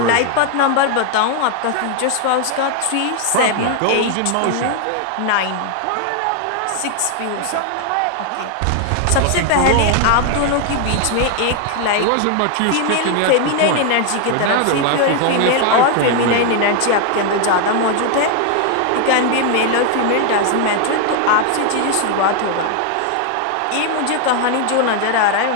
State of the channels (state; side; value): different; both; correlation 0.00